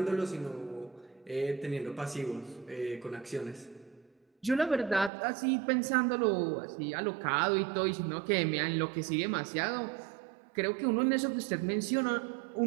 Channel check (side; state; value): left; drops out; at 5.1 s